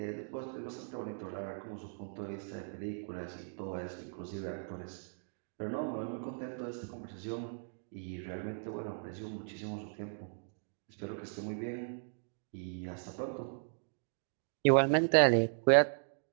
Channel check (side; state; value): left; silent; digital silence